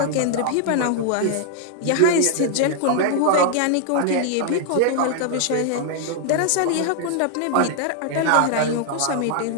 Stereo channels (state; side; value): different; both; correlation 0.00